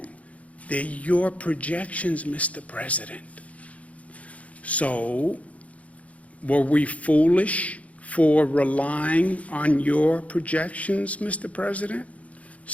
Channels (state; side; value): late; right; 0.067 ms